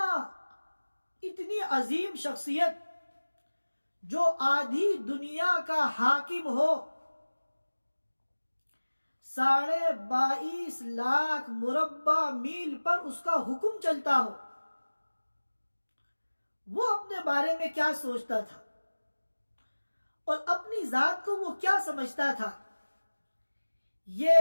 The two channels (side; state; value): both; inverted; correlation -1.00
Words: اتنی عظیم شخصیت جو آدھی دنیا کا حاکم ہو، 22.5 لاکھ مربع میل پر اس کا حکم چلتا ہو، وہ اپنے بارے میں کیا سوچتا تھا اور اپنی ذات کو وہ کیا سمجھتا تھا،